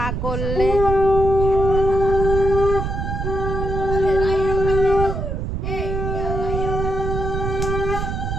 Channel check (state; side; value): noise; right; rumble, 2 dB below the sound